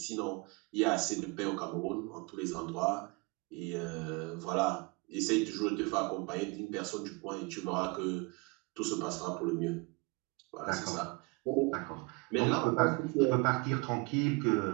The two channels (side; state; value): left; quieter; 28.8 dB